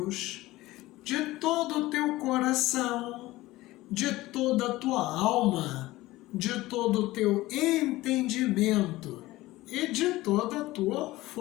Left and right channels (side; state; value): right; quieter; 18.2 dB